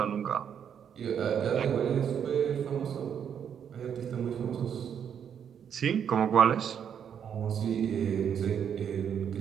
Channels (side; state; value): left; quieter; 8.2 dB